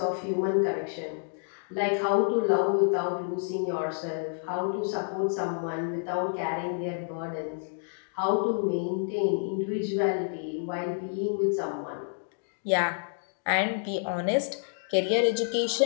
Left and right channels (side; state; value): right; silent; digital silence